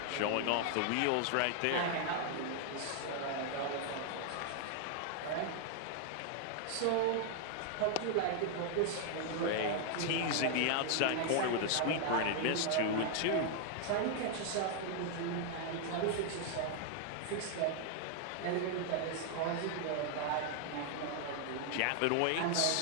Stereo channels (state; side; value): different; both; correlation 0.00